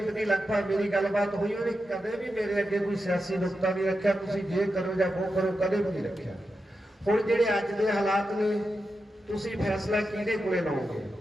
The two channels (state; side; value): normal; both; correlation 0.89